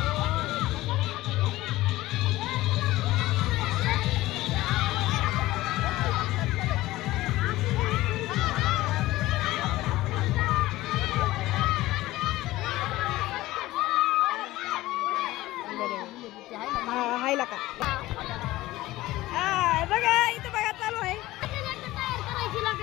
हायला का बघा इथं बघा चालू आहे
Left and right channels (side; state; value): right; quieter; 17.4 dB